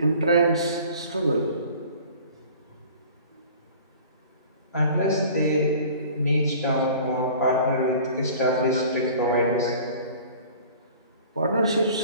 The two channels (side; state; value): both; inverted; correlation -0.45